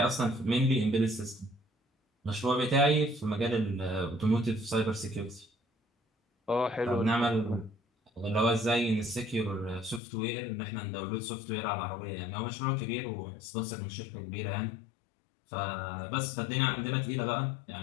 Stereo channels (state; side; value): drops out; right; at 10.0 s